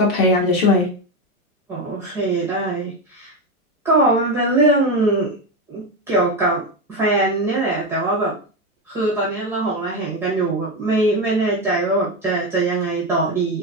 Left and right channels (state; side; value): normal; both; correlation 0.13